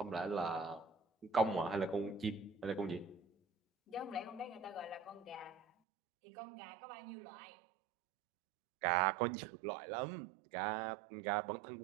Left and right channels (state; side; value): drops out; left; at 5.7 s